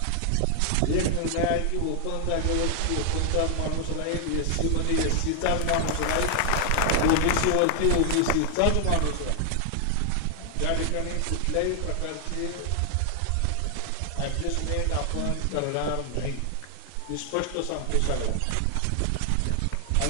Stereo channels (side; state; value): both; different; correlation 0.00